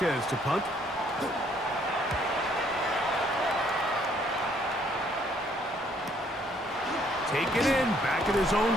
to punt. Taken in, back at his own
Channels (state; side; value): normal; both; correlation 0.65